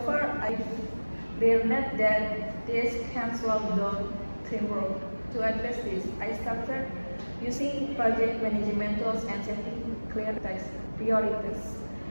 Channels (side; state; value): both; inverted; correlation -1.00